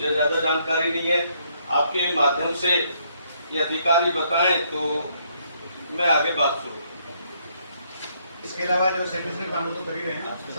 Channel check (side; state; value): both; inverted; correlation -0.71